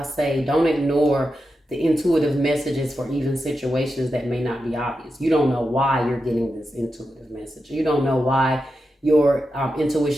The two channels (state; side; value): normal; both; correlation 0.89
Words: say, don't ignore the intuitive messages for even situations that may not be obvious. You don't know why you're getting this intuitive message. You don't know why your